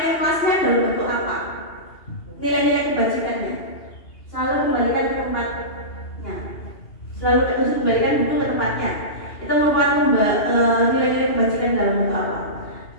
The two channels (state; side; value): late; right; 2.8 ms